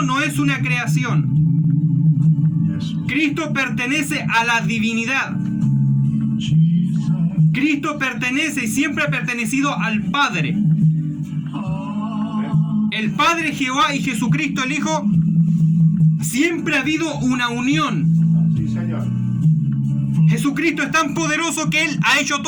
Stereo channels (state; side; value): identical; both; correlation 1.00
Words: no es una creación. Cristo pertenece a la divinidad. Cristo pertenece y siempre ha pertenecido al Padre. El Padre Jehová y Jesucristo el Hijo, siempre ha habido una unión. Sí, Señor. Jesucristo es tan poderoso que Él ha hecho